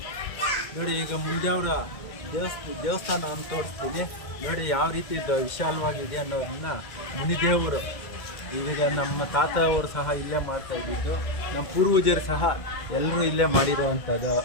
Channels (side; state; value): right; late; 2.0 ms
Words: ನೋಡಿ, ಈಗ ಮುಂಜಾವರ ದೇವಸ್ಥಾನ ಅಂತ ತೋರಿಸ್ತೀನಿ. ನೋಡಿ, ಯಾವ ರೀತಿ ವಿಶಾಲವಾಗಿದೆ ಅನ್ನೋದನ್ನ ಮುನಿದೇವರು, ಈಗ ನಮ್ಮ ತಾತ ಅವರು ಸಹ ಇಲ್ಲೇ ಮಾಡ್ತಾ ಇದ್ದಿದ್ದು. ನಮ್ಮ ಪೂರ್ವಜರು ಸಹ ಎಲ್ಲರೂ ಇಲ್ಲೇ ಮಾಡಿರೋವಂಥದ್ದು